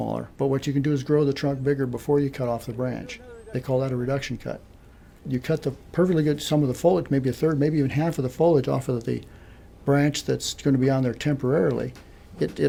but what you can do is grow the trunk bigger before you cut off the branch. They call that a reduction cut. You cut the perfectly good some of the foliage, maybe 1/3, maybe even half of the foliage off of the branch that's going to be on there temporarily.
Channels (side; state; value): both; identical; correlation 1.00